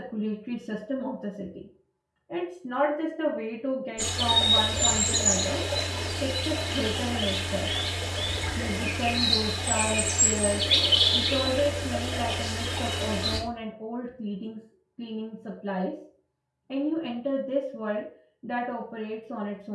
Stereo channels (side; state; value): both; identical; correlation 1.00